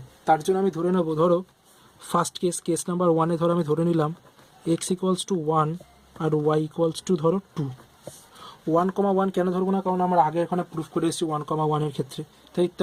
তার জন্য আমি ধরে নেবো, ধরো ফার্স্ট কেস নাম্বার 1-এ ধরো আমি ধরে নিলাম x ইকুয়ালস টু 1 আর y ইকুয়ালস টু ধরো 2। 1,1 কেন ধরবো না, কারণ আমরা আগে এখানে প্রুফ করে এসেছি 1,1-এর ক্ষেত্রে,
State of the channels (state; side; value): identical; both; correlation 1.00